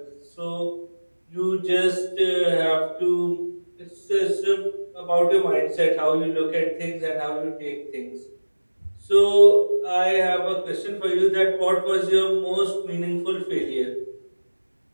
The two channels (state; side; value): inverted; both; correlation -1.00